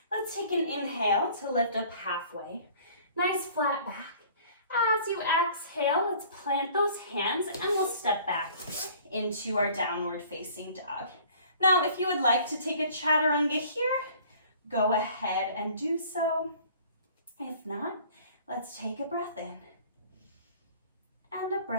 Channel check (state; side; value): inverted; both; correlation -0.51